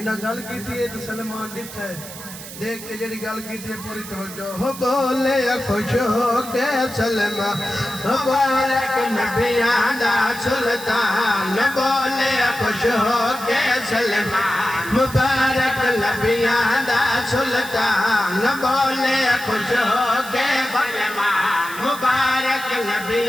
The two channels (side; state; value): right; noise; hiss, 13 dB below the sound